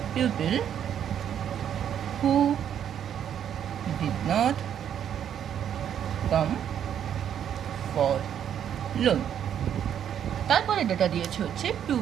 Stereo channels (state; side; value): quieter; left; 9.3 dB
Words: pupil who did not come for loan. তারপরে ডেটা দিয়েছে হচ্ছে